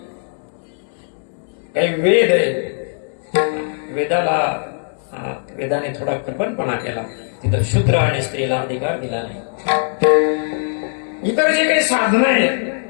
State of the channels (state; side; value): silent; right; 62 dB below the other